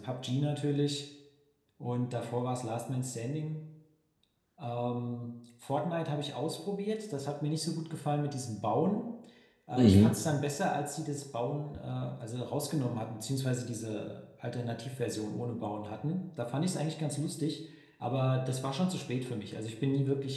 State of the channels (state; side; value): identical; both; correlation 1.00